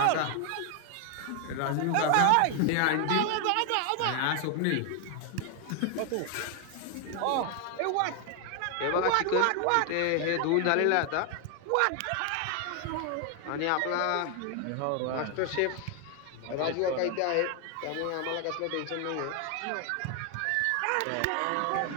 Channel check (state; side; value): different; both; correlation 0.00